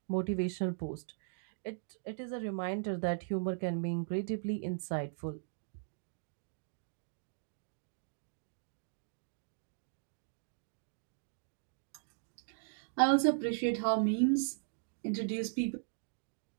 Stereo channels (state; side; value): silent; left; digital silence